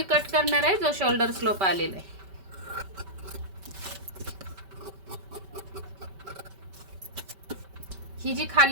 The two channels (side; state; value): left; late; 5.2 ms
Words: कट करणार आहे जो शोल्डर स्लोप आलेला आहे. ही जी